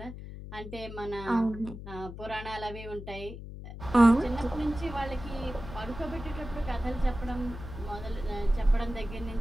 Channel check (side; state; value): left; noise; hum, 11 dB below the sound